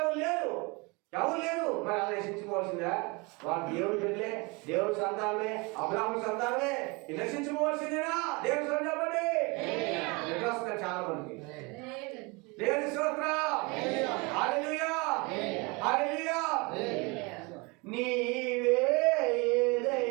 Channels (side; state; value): left; quieter; 27.7 dB